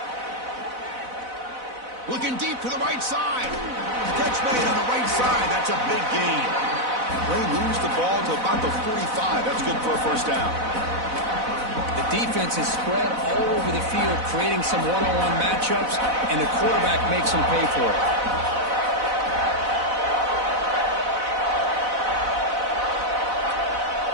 Looking deep to the right side. Catch made on the right side. That's a big gain. They moves the ball to about the 45. That's good for a 1st down. The defense is spread all over the field, creating some one-on-one matchups, and the quarterback makes them pay for it.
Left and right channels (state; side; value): late; left; 4.0 ms